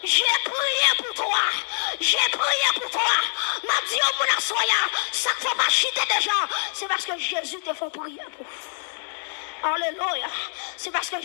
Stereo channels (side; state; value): right; silent; 62 dB below the other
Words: j'ai prié pour toi. J'ai prié pour toi. M'a dit au mon assoya, ça ne faut pas chiter des gens. C'est parce que Jésus te fait prier pour. Alléluia. C'est parce que